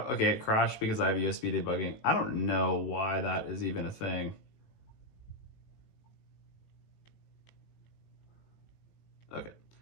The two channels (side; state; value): right; late; 18 ms